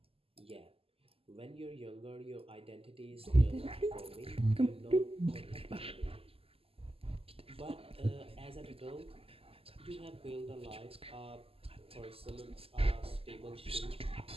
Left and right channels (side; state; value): left; late; 0.28 ms